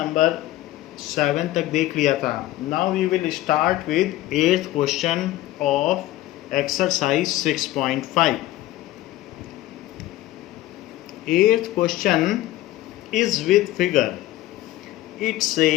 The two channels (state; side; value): quieter; right; 15.6 dB